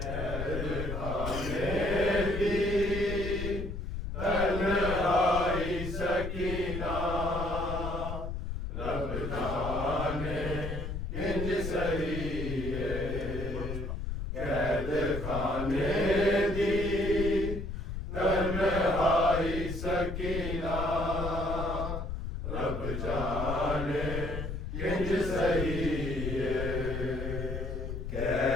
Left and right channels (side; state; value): left; noise; rumble, 5 dB below the sound